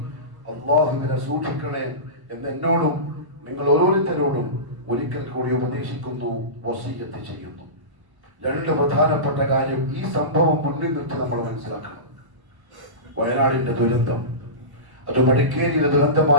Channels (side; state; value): left; late; 1.0 ms